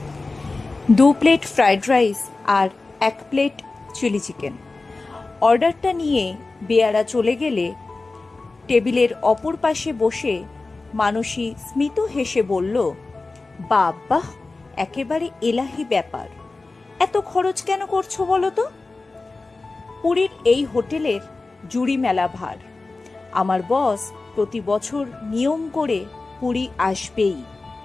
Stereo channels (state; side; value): quieter; right; 3.5 dB